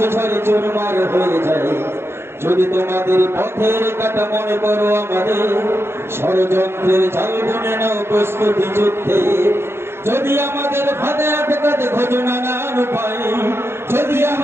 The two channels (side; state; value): left; late; 0.12 ms